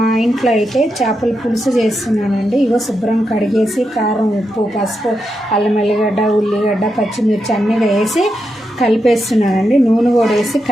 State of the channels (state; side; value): normal; both; correlation 0.86